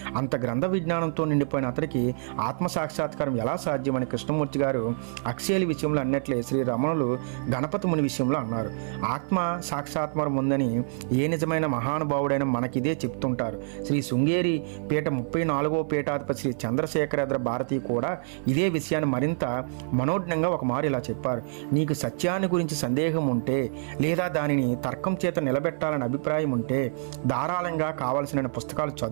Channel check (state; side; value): silent; left; 56 dB below the other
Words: అంత గ్రంథ విజ్ఞానంతో నిండిపోయిన అతనికి ఆత్మ సాక్షాత్కారం ఎలా సాధ్యమని కృష్ణమూర్తి గారు హక్స్లీ విషయంలో అన్నట్లే శ్రీ రమణులు గణపతి ముని విషయంలో అన్నారు. ఆత్మ సాక్షాత్కారం ఉందని ఏ నిజమైన మహానుభావుడైన మనకిదే చెప్తుంటారు. శ్రీ శృంగేరి పీఠ 34వ పీఠాధిపతి శ్రీ చంద్రశేఖరేంద్ర భారతి కూడా ఇదే విషయాన్ని మరింత మనోజ్ఞంగా ఒక మారు ఇలా చెప్పారు: నీకు సత్యాన్ని గురించి సందేహం ఉంటే, లేదా దానిని తర్కం చేత నిలబెట్టాలని అభిప్రాయం ఉంటే ధారాళంగా కావలసిన పుస్తకాలు